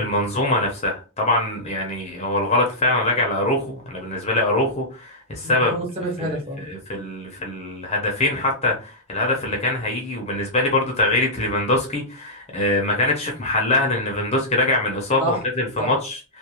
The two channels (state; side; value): normal; both; correlation -0.11